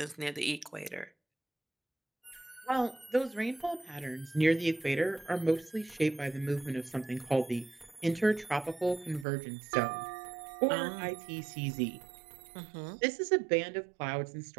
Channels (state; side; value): drops out; left; at 9.2 s